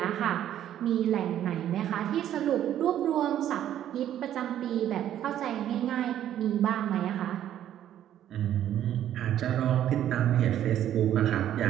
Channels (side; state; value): left; quieter; 11.3 dB